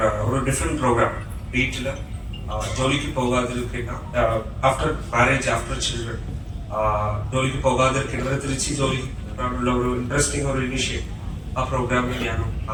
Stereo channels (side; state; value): both; identical; correlation 1.00